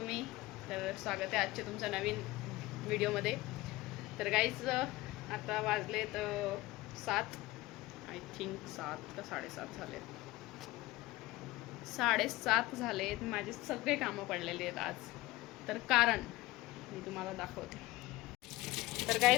तर स्वागत आहे आजच्या तुमच्या नवीन व्हिडिओमध्ये. तर गाईज आता वाजलेत 7, आय थिंक 7 का 7:30 झालेत. 7:30 झालेत. माझे सगळे कामं पडलेले आहेत आज. तर कारण मी तुम्हाला दाखवते. तर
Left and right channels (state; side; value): quieter; right; 19.2 dB